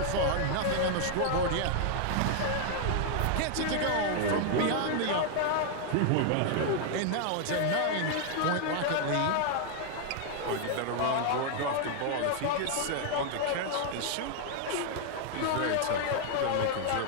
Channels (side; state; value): both; different; correlation 0.00